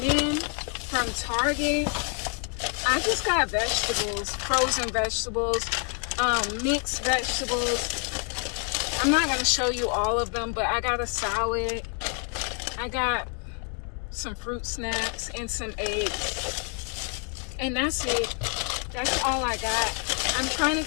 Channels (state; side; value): quieter; right; 39.5 dB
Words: then from Target, I just got vegetables, frozen vegetables, mixed vegetables. I'm not going to show you all of them, but I got a salad. I got some fruit snacks and some eggs. And that's it. That's all I got. I'm trying